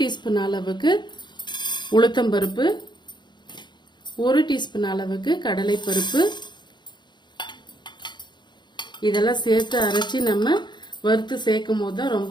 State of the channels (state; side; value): late; right; 0.22 ms